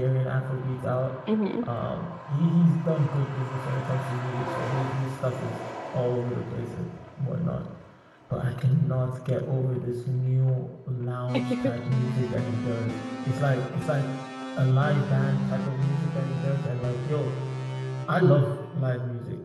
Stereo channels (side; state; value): both; identical; correlation 1.00